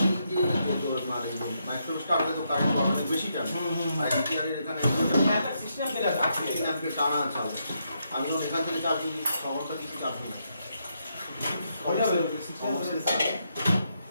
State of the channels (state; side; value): inverted; both; correlation -0.79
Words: এই যে আপনার এই যে মাইক্রো স্টার্টে তো কারেন্ট অনেক বেশি টানে, আর এনটিআরের এখানে সিস্টেম অ্যাম্পের টানা চাল। আমি যখন এখান থেকে চার্জ দিই খবরটা কিছু চার্জ নেই।